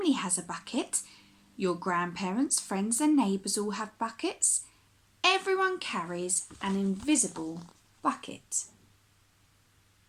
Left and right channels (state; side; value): identical; both; correlation 1.00